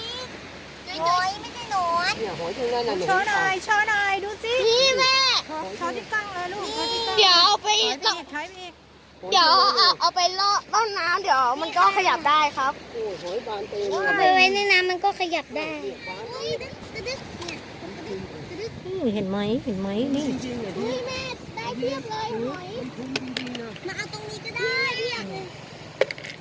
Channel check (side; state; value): both; identical; correlation 1.00